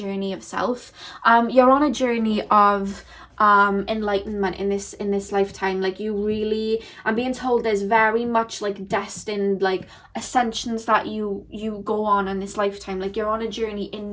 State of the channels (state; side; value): identical; both; correlation 1.00